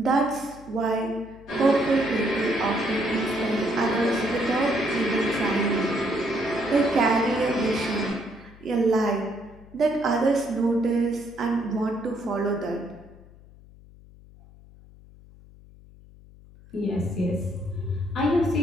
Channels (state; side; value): noise; left; hum, 22 dB below the sound